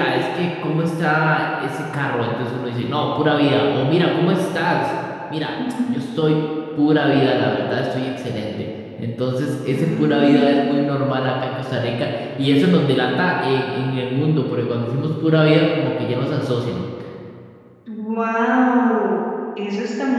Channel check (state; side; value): identical; both; correlation 1.00